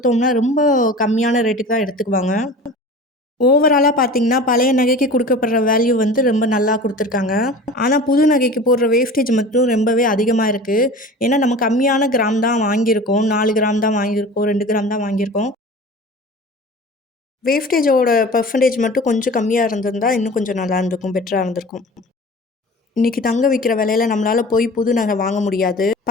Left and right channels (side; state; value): both; normal; correlation 0.38